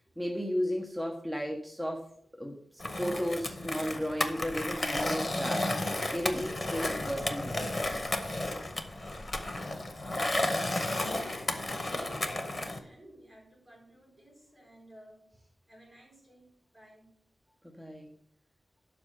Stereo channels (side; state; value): both; normal; correlation 0.95